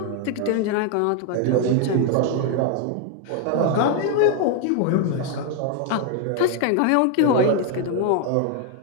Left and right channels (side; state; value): both; different; correlation 0.00